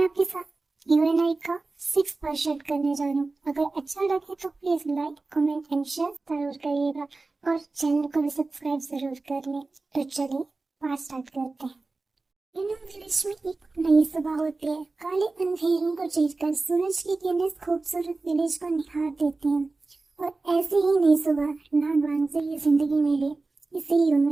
आपके साथ यूएनआई का 6 पार्ट शेयर करने जा रही हूँ। अगर अच्छा लगे तो please like, comment and share जरूर करिएगा और चैनल को भी सब्सक्राइब जरूर कर लें। तो चलिए पार्ट स्टार्ट करते हैं। यूएनआई विलेज में एक नई सुबह होती है। काले अंधेरों को चीरकर सूरज की किरणें खूबसूरत विलेज को निहार देती हैं। और ऐसी ही नई सुबह नागवान से ये जिंदगी मिली इसी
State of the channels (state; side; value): quieter; left; 3.5 dB